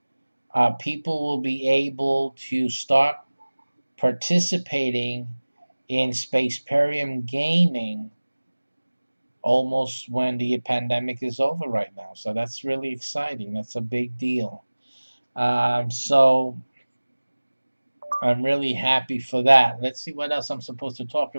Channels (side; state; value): both; inverted; correlation -1.00